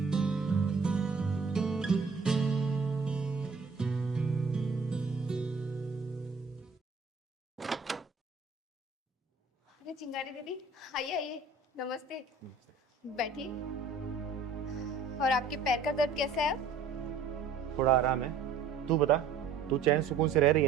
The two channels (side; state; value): left; quieter; 4.6 dB